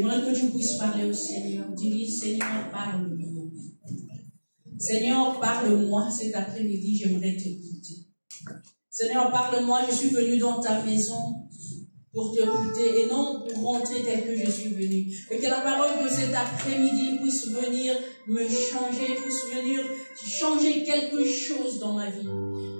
que tu puisses parler au Seigneur. Dis-lui, Seigneur, parle-moi. Seigneur, parle-moi cet après-midi, j'aimerais t'écouter. Seigneur, parle-moi, je suis venu dans ta maison pour t'écouter et non pour rentrer tel que je suis venu. Et que la parole de cet après-midi puisse venir me changer, puisse venir changer quelque chose dans ma vie.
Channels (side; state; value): both; inverted; correlation -1.00